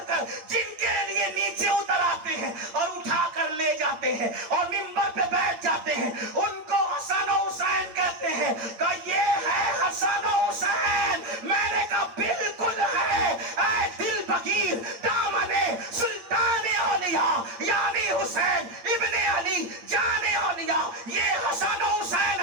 جن کے لیے نیچے اتر آتے ہیں اور اٹھا کر لے جاتے ہیں اور ممبر پہ بیٹھ جاتے ہیں ان کو حسن و حسین کہتے ہیں. کہ یہ ہے حسن و حسین. میں نے کہا بالکل ہے. اے دل بغیر دامن سلطان اولیاء یعنی حسین ابن علی جان اولیاء یہ حسن و حسین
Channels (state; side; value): late; left; 8.8 ms